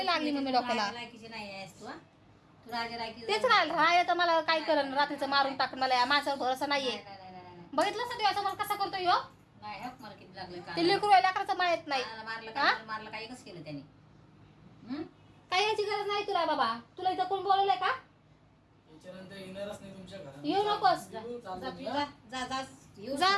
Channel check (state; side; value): identical; both; correlation 1.00